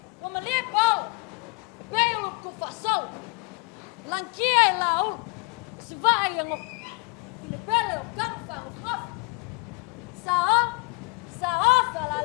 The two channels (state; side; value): quieter; right; 29.7 dB